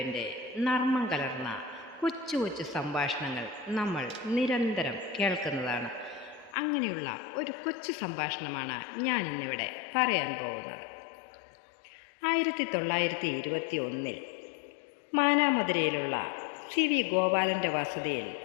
നർമ്മം കലർന്ന കൊച്ചു കൊച്ചു സംഭാഷണങ്ങൾ നമ്മൾ നിരന്തരം കേൾക്കുന്നതാണ്. അങ്ങനെയുള്ള ഒരു കൊച്ചു സംഭാഷണമാണ് ഞാൻ ഇന്നിവിടെ പറയാൻ പോകുന്നത്. 1921 മാനാമധുരയിലുള്ള സി വി ഗോപാലൻ്റെ വസതിയിൽ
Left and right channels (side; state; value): right; drops out; at 6.6 s